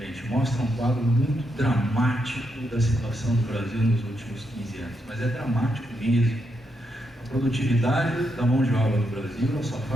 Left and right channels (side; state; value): both; normal; correlation 0.81